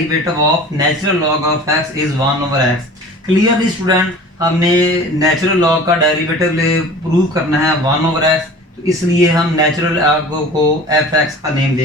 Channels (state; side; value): normal; both; correlation 0.41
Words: of natural log of x is 1 over x। Clearly student, हमने नेचुरल लॉग का डेरिवेटिव प्रूव करना है 1 over x, तो इसलिए हम natural log को f(x) का name